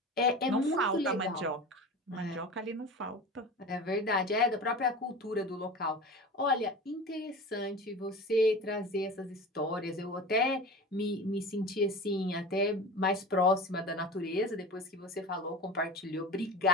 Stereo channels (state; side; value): normal; both; correlation 0.33